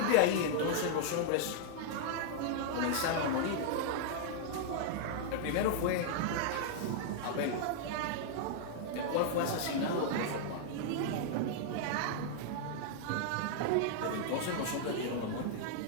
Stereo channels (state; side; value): different; both; correlation -0.01